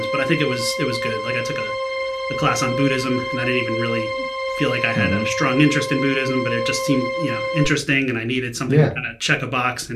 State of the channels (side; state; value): both; identical; correlation 1.00